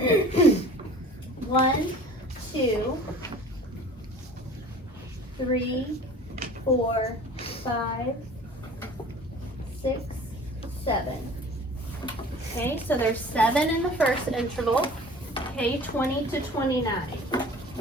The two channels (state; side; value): normal; both; correlation 0.44